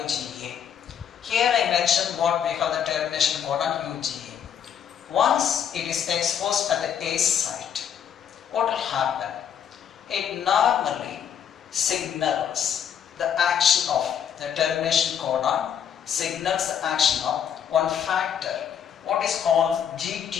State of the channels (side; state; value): right; quieter; 8.5 dB